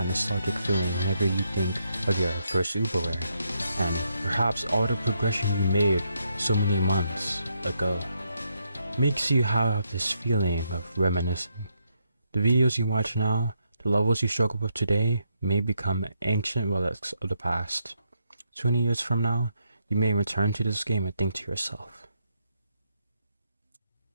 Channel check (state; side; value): inverted; both; correlation -0.78